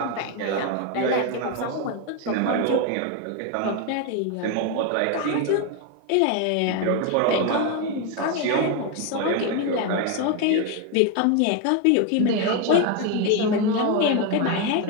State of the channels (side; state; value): both; different; correlation 0.02